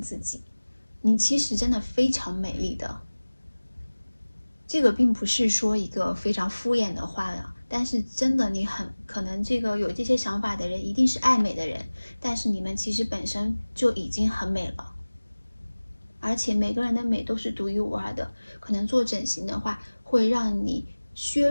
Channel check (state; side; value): inverted; both; correlation -1.00